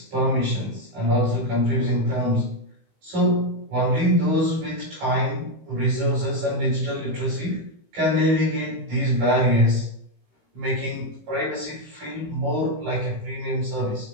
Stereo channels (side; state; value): left; late; 18 ms